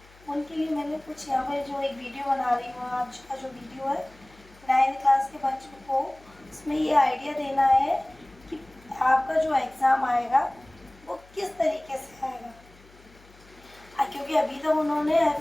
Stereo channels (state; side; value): noise; left; hum, 26 dB below the sound